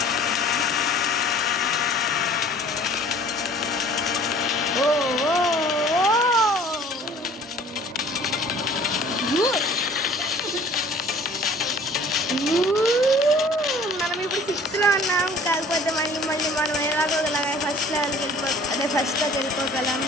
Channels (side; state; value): both; normal; correlation 0.50